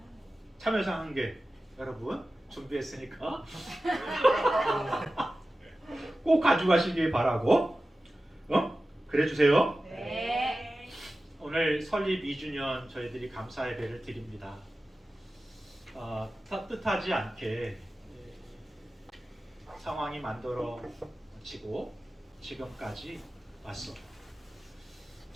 참여상 1개. 여러분 준비했으니까 꼭 가져가시길 바라고. 그래 주세요. 네. 오늘 설립 2주년 저희들이 감사 예배를 드립니다. 뜻하지 않게 상황이 만들어지고 지금까지 왔어.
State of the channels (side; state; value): both; normal; correlation 0.95